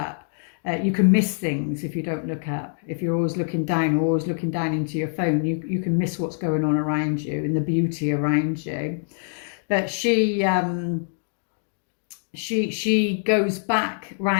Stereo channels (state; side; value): silent; right; digital silence